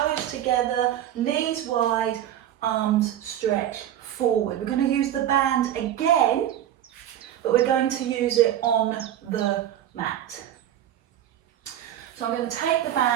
together, knees wide, arms stretch forward. We're going to use the band again, but we're going to use it on the mat. So I'm going to take the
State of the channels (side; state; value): left; quieter; 11.3 dB